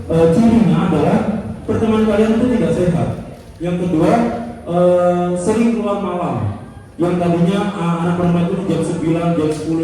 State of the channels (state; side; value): identical; both; correlation 1.00